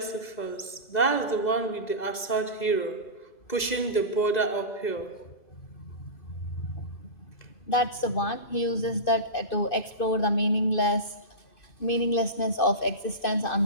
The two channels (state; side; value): late; right; 2.0 ms